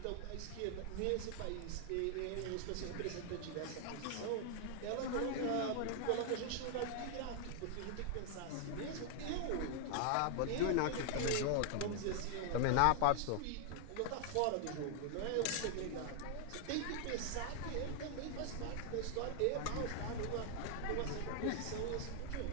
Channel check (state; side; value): different; both; correlation 0.00